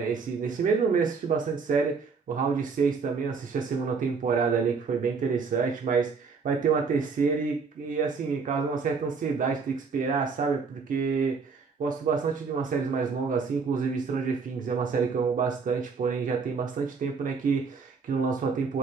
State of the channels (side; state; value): left; quieter; 5.1 dB